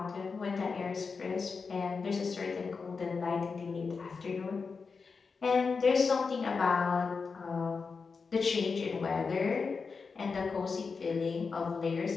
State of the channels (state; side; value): quieter; right; 4.9 dB